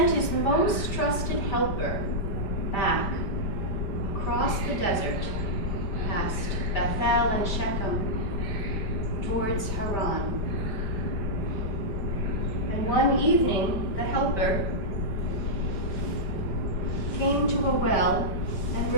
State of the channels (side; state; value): right; late; 5.0 ms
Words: his most trusted helper back across the desert, past Bethel and Shechem, towards Haran. And one evening, the helper came to a well, and